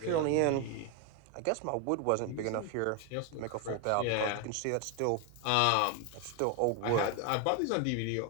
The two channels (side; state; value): both; different; correlation 0.01